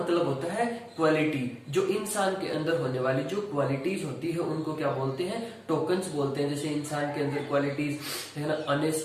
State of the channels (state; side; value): identical; both; correlation 1.00